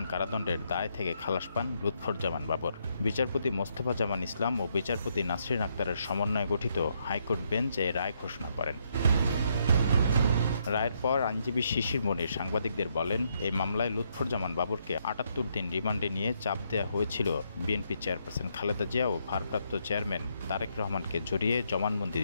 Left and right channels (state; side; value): inverted; both; correlation -0.75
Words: কারাদণ্ডের দায় থেকে খালাস পান লুৎফুজ্জামান বাবর। বিচারপতি মোস্তফা জামান ইসলাম ও বিচারপতি নাসরিন আক্তারের সমন্বয়ে গঠিত হাইকোর্ট বেঞ্চ এই রায় ঘোষণা করেন। রায়ের পর আইনজীবী শিশির মনির সাংবাদিকদের বলেন, এই মামলায় লুৎফুজ্জামান বাবরকে ৭৮ দিন রিমান্ডে নিয়ে চাপ দেওয়া হয়েছিল বিএনপি চেয়ারপারসন খালেদা জিয়া ও ভারপ্রাপ্ত চেয়ারম্যান তারেক রহমানকে জড়িয়ে জবানবন্দি